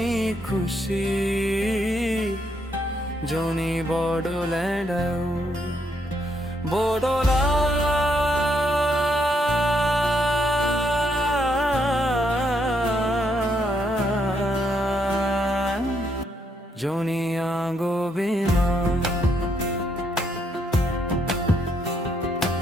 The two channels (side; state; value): both; normal; correlation 0.75